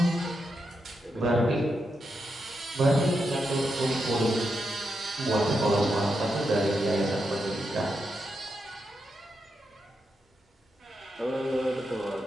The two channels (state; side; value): normal; both; correlation 0.85